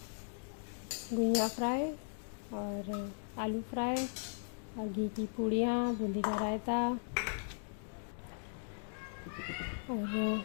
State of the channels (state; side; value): silent; right; digital silence